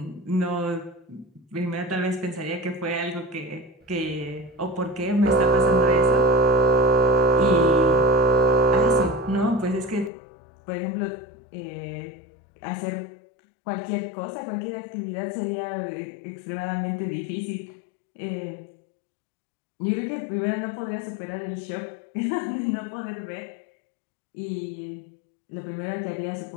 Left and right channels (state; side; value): drops out; right; at 10.1 s